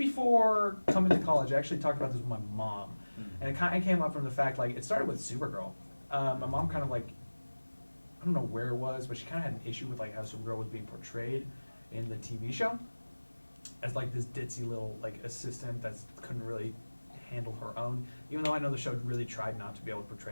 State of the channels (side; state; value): both; inverted; correlation -1.00